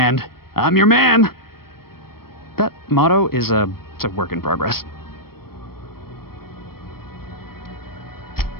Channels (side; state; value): right; late; 0.94 ms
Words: I'm your man. That motto is it's a work in progress.